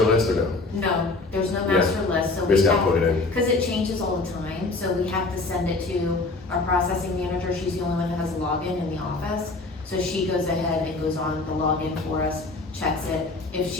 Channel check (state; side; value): quieter; right; 3.4 dB